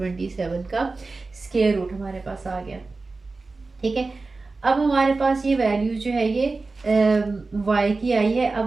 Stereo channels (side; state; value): left; quieter; 3.7 dB